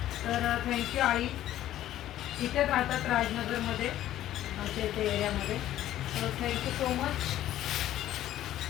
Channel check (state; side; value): quieter; right; 13.0 dB